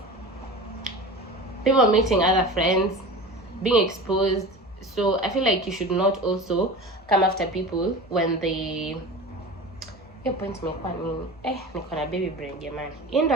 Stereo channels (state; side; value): normal; both; correlation 0.33